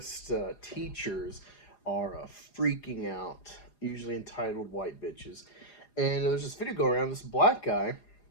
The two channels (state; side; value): late; right; 4.9 ms